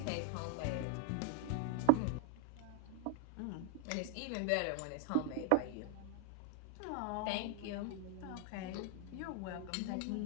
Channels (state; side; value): different; both; correlation 0.00